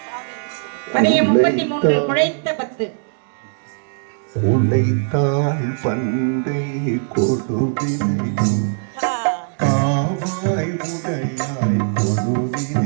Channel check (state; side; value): silent; left; digital silence